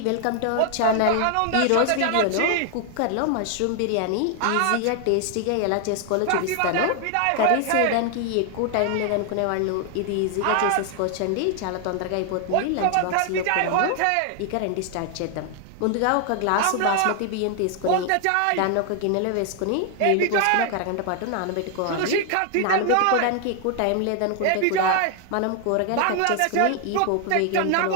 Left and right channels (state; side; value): different; both; correlation 0.00